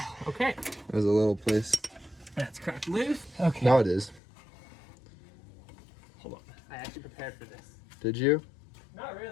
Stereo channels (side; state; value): right; drops out; at 4.2 s